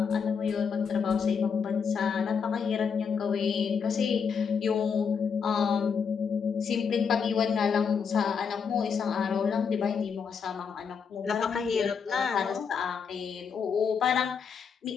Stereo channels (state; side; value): quieter; right; 6.3 dB